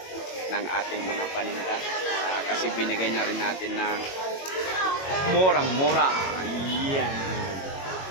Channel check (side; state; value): right; late; 21 ms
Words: ng ating mga paninda. Kasi binigay na rin natin ng murang-mura. Ayan.